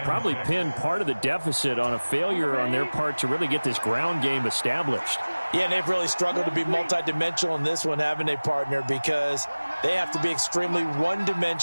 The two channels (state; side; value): inverted; both; correlation -1.00